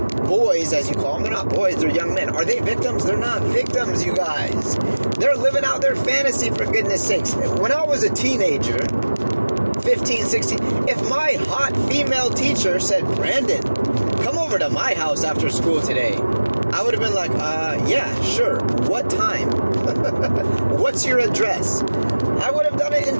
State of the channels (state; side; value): inverted; both; correlation -1.00